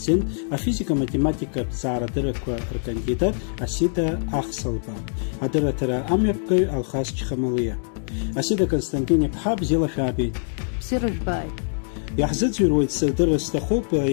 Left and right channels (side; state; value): right; silent; digital silence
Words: афизика-математикатә ҭҵаарадыррақәа ркандидат Асида Ахсалба, адырраҭара амҩаԥгаҩ Алхас Чхамалиа. Асида Константин-иԥҳа, бзиала шәаабеит. Бзиара жәбааит. Иаҳзыӡырҩуеит сырдырра сҭахуп